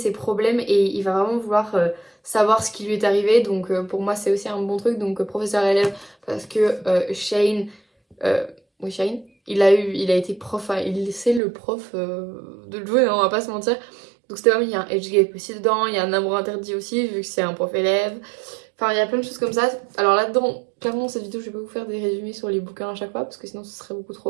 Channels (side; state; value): left; drops out; at 11.4 s